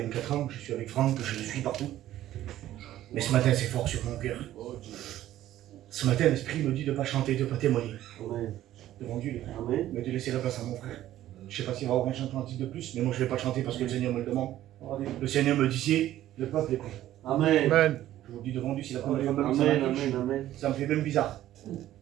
ans, je suis avec Franck, je le suis partout. Mais ce matin, c'est fort sur mon cœur. Ce matin, l'Esprit me dit de ne pas chanter, de ne pas témoigner. Devant Dieu, les frères. Mais de laisser la place à mon frère. Je ne sais pas s'il va y avoir un chantement de plus, mais moi je ne vais pas chanter parce que le Seigneur me le demande. Le Seigneur me dit, le peuple est prêt. Amen. Je vous le dis devant Dieu, c'est la première fois que ça me fait même bizarre.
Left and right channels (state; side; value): quieter; left; 13.4 dB